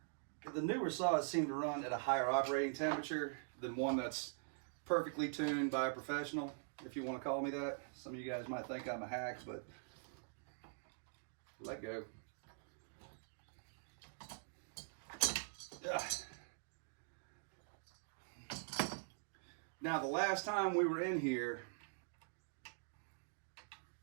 the newer saws seem to run at a higher operating temperature than one that's perfectly tuned by a professional, if you want to call me that. Some of you guys might think I'm a hack, but let go. Ugh. Now, the last time we were in here,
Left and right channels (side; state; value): left; silent; digital silence